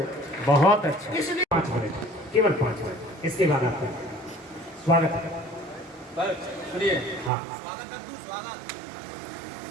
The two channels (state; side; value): drops out; left; at 7.3 s